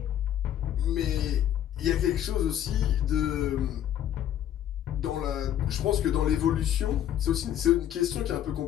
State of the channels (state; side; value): quieter; right; 11.0 dB